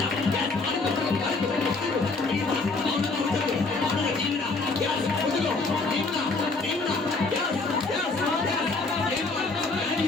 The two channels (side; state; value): right; quieter; 3.7 dB